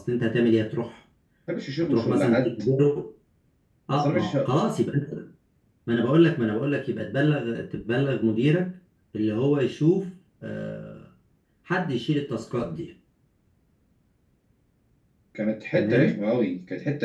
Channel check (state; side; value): identical; both; correlation 1.00